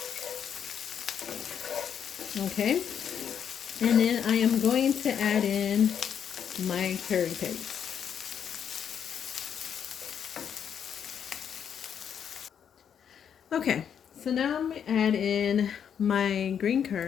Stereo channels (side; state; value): right; quieter; 8.2 dB